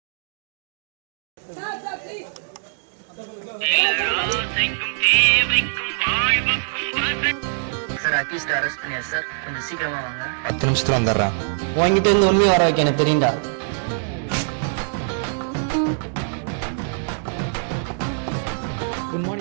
அரெஸ்ட் பண்ணியா சார்? கொஞ்சம் சீக்கிரமா வாங்க. 10 நிமிஷத்துல வந்துடுறேன். உங்ககிட்ட இருந்து உண்மையை வர வைக்க எனக்கு தெரியும்டா. குட்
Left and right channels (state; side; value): silent; left; digital silence